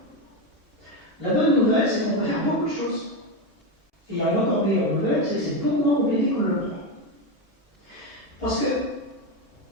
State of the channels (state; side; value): normal; both; correlation 0.12